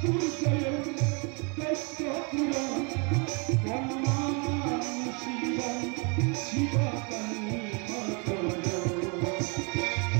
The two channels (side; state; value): left; quieter; 33.4 dB